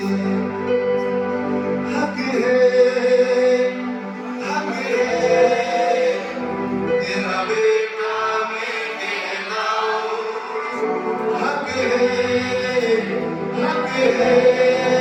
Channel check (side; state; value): both; identical; correlation 1.00